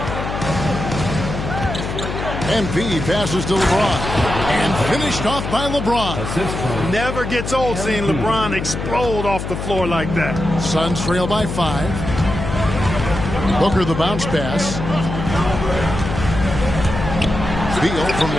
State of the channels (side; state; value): left; noise; hum, 5 dB below the sound